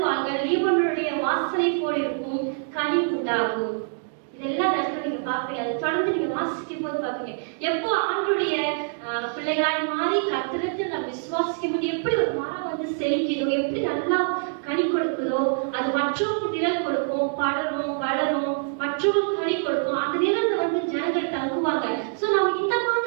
லீபனோனுடைய வாசனை போல் இருக்கும், கனி உண்டாகும். இதெல்லாம் நடக்கும். நீங்க பாப்பீங்க, அதை தொடர்ந்து நீங்க வாசிக்கும் போது பாப்பீங்க எப்போ ஆண்டருடைய பிள்ளைகளாய் மாறி கர்த்தரிடத்தில் நம்ம விசுவாசிக்கும் போது எப்படி ஒரு மரம் வந்து செழிக்குதோ, எப்படி நல்லா கனி கொடுக்குதோ, அது மற்றவங்களுக்கு நிழல் கொடுக்கும், படரும் வளரும், மற்றவங்களுக்கு கனி கொடுக்கும். அந்த நிழல்ல வந்து ஜனங்கள் தங்குவாங்க. சோ நம்ம இந்த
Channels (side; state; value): left; silent; digital silence